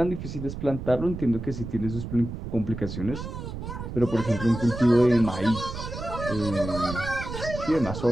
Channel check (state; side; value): noise; right; rumble, 8 dB below the sound